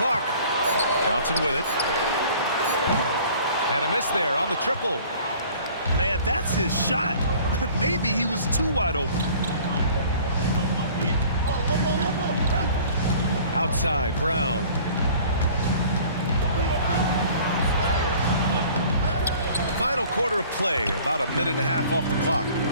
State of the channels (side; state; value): both; inverted; correlation -0.49